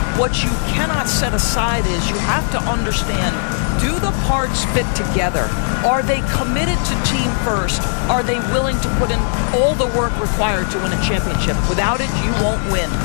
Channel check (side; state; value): right; silent; digital silence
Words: What you cannot set aside is you have to understand, do the parts fit together? Are they committed to team first? Are they willing to put in all the work required to win a championship? Without it, you won't win.